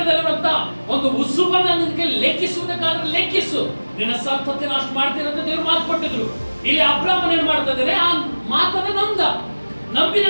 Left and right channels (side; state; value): both; inverted; correlation -1.00